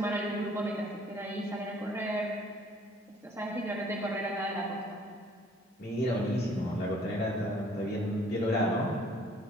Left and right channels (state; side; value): normal; both; correlation 0.58